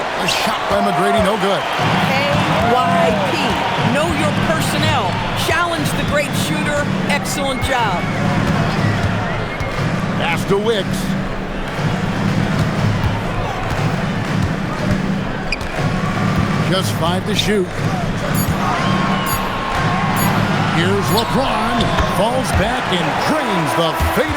shot by McGrady, no good. KYP. Know your personnel. Challenge the great shooter. Excellent job. Pass to Wicks. Just 5 to shoot. Here's LeBron. Falls back and drains the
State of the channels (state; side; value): identical; both; correlation 1.00